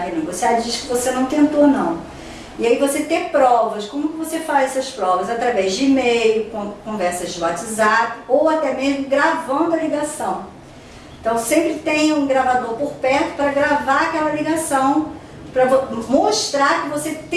diz que você não tentou não. E aí você ter provas. Como que você faz essas provas? Através de e-mail, conversas de WhatsApp ou até mesmo gravando a ligação. Então sempre tenha um gravador por perto para gravar aquela ligação, para mostrar que você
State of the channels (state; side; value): identical; both; correlation 1.00